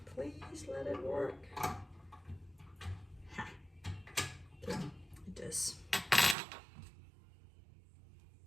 please let it work. Ha. Okay, it does.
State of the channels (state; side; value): drops out; left; at 6.4 s